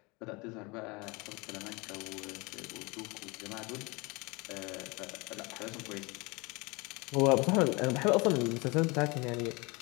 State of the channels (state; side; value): quieter; right; 26.5 dB